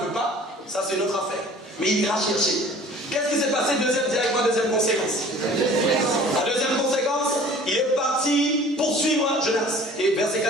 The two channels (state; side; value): normal; both; correlation 0.48